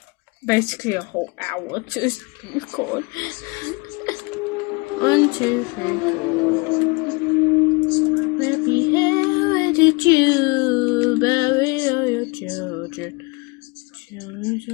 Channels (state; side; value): quieter; right; 27.9 dB